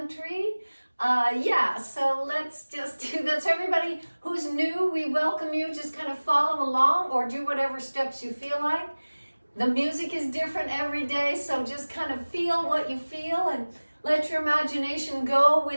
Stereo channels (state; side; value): inverted; both; correlation -1.00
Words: So let's just do this. Everybody who's new, we welcome you. Just kind of follow along or do whatever steps you feel like. The music is different every day, so just kind of feel what you feel and let your imagination go